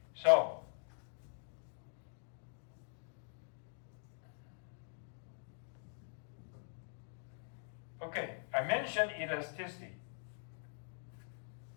So okay, I mentioned elasticity.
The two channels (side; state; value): right; silent; digital silence